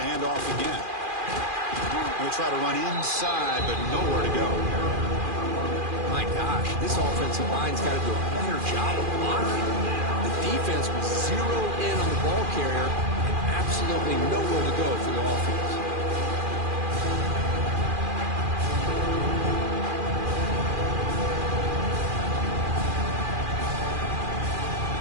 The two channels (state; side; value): late; left; 2.4 ms